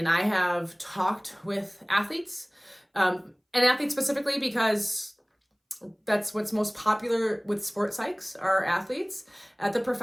I have talked with athletes, and athletes specifically because that's what's most popular with sports psychs, are athletes at the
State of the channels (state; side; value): identical; both; correlation 1.00